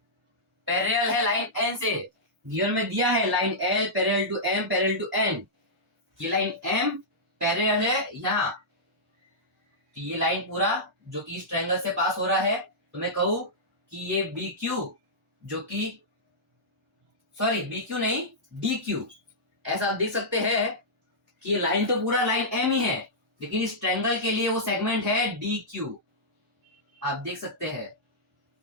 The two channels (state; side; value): normal; both; correlation -0.12